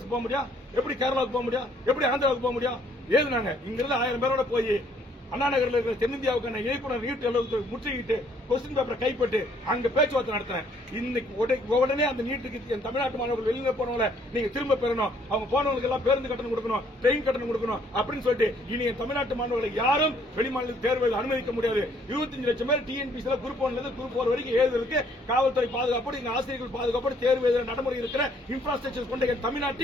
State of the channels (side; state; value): both; normal; correlation 0.64